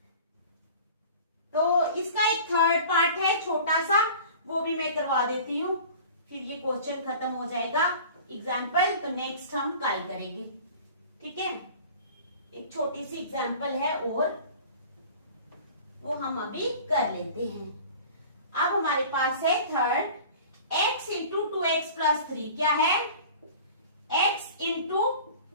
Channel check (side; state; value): both; inverted; correlation -0.42